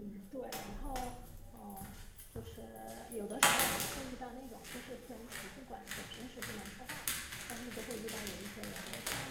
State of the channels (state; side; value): identical; both; correlation 1.00